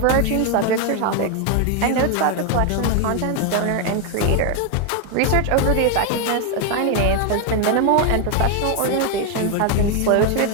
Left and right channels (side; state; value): both; different; correlation 0.01